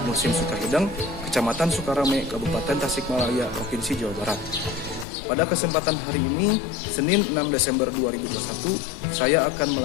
Muhsin Sukahideng, Kecamatan Sukarame, Kabupaten Tasikmalaya, Provinsi Jawa Barat. Pada kesempatan hari ini, Senin 6 Desember 2021, saya akan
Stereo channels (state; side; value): drops out; right; at 5.1 s